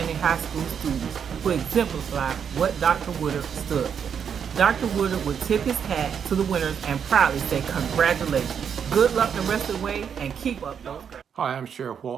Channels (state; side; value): quieter; left; 7.5 dB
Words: high school students who exemplify what Dr. Woodard stood for. Dr. Woodard would tip his hat to the winners and proudly say congratulations. Good luck the rest of the way and keep up those grades. Hi, I'm Sheriff